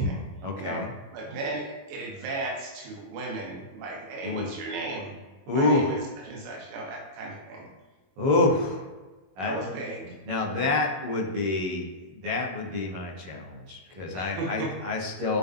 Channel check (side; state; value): left; late; 21 ms